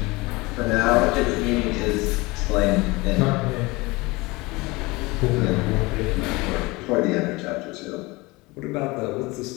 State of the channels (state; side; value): quieter; right; 23.2 dB